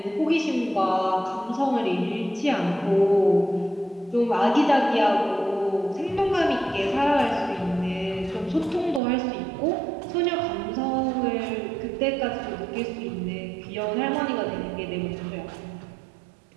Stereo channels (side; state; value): left; drops out; at 9.0 s